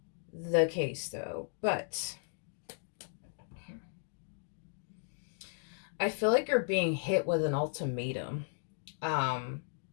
the case though, but I feel like you're being hit with an ultimatum. Um,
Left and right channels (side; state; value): right; silent; digital silence